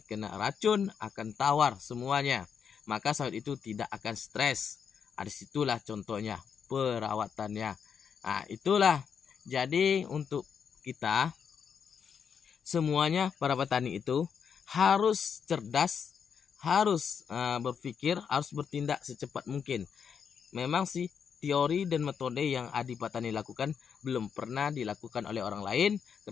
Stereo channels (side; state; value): right; quieter; 7.0 dB